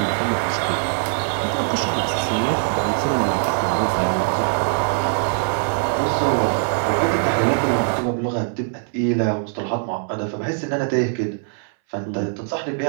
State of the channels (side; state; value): left; silent; 62 dB below the other